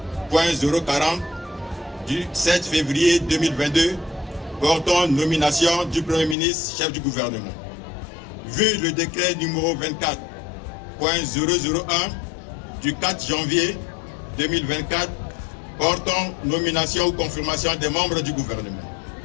du 7 février 2022 portant nomination du Premier ministre, chef du gouvernement, vu le décret numéro 24.001 du 4 janvier 2024 portant nomination ou confirmation des membres du gouvernement,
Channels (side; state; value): right; drops out; at 6.4 s